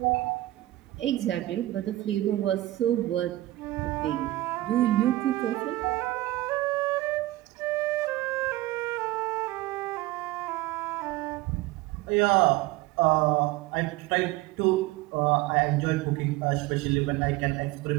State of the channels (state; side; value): quieter; left; 17.5 dB